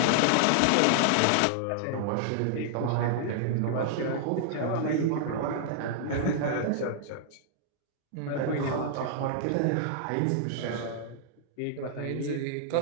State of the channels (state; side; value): different; both; correlation -0.01